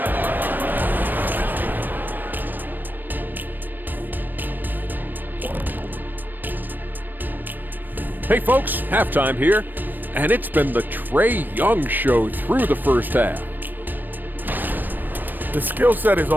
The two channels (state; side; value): late; left; 0.091 ms